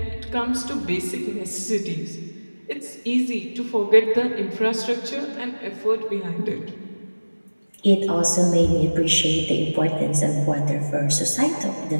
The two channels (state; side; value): inverted; both; correlation -1.00